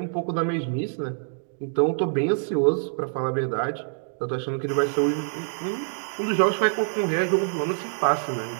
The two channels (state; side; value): silent; left; digital silence